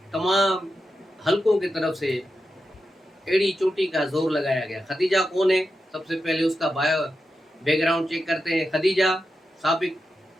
तमाम हलकों की तरफ से एड़ी चोटी का जोर लगाया गया। खदीजा कौन है? सबसे पहले उसका बैकग्राउंड चेक करते हैं। खदीजा साबिक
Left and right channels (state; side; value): normal; both; correlation 0.89